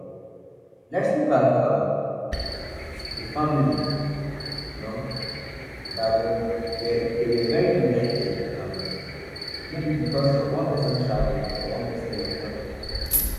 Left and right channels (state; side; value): identical; both; correlation 1.00